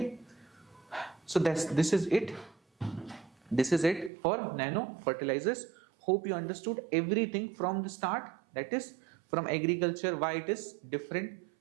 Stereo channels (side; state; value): left; drops out; at 4.1 s